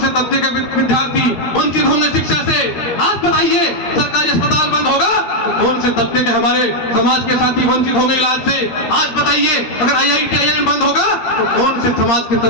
तबके के विद्यार्थी वंचित होंगे शिक्षा से। आज बताइए सरकारी अस्पताल बंद होगा तो कौन से तबके के हमारे समाज के साथी वंचित होंगे इलाज से। आज बताइए अगर IIT IIM बंद होगा तो कौन से समाज के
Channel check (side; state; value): right; late; 13 ms